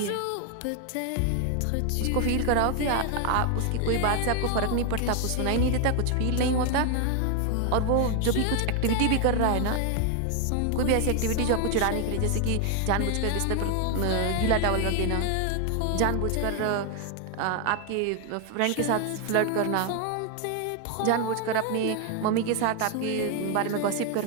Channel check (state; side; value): different; both; correlation 0.00